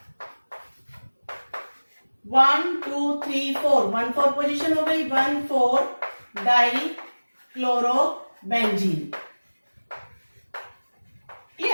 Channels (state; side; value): inverted; both; correlation -1.00